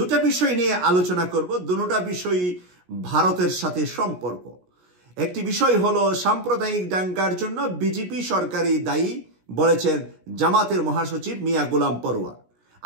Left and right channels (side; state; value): left; late; 17 ms